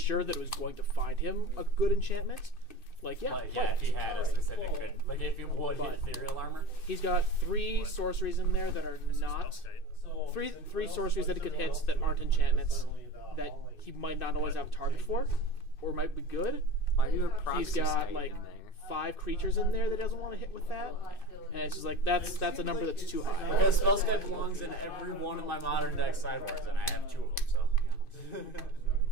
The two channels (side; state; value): right; late; 2.6 ms